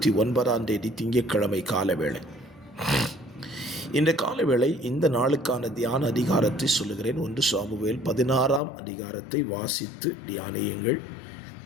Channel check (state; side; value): drops out; right; at 8.6 s